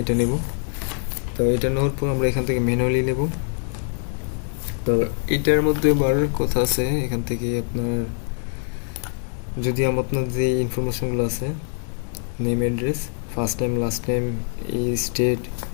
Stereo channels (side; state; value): right; silent; 55 dB below the other